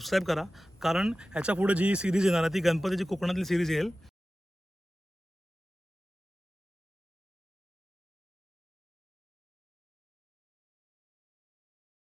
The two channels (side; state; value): both; normal; correlation 0.95